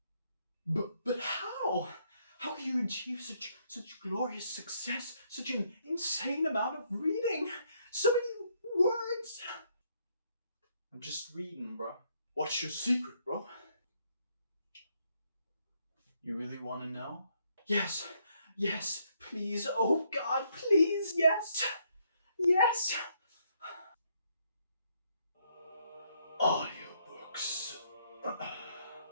But how? How can you achieve such glorious success? Such an insane amount of reading? So many words! I'm just reading, bro. What's your secret, bro? You really want to know? Yes, please. Oh God, please, yes. Audiobooks.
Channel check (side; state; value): both; inverted; correlation -0.72